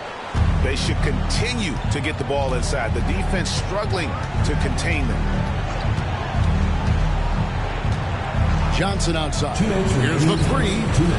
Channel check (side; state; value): both; identical; correlation 1.00